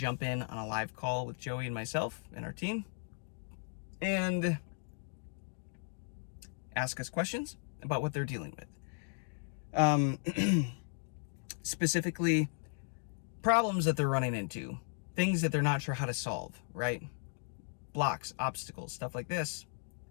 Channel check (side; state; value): right; silent; 54 dB below the other